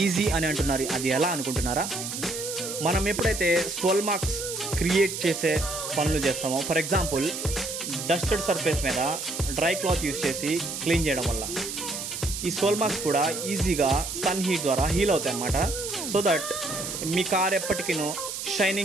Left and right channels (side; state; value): right; noise; hiss, 6 dB below the sound